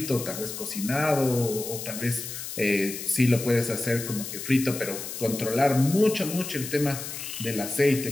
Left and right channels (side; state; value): left; noise; hiss, 8 dB below the sound